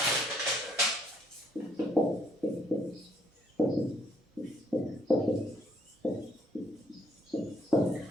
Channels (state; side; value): normal; both; correlation 0.68